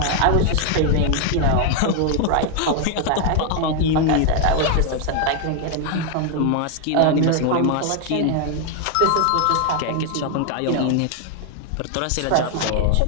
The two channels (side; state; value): both; different; correlation 0.00